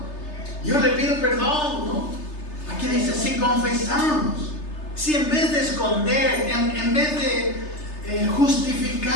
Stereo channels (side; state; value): right; late; 3.3 ms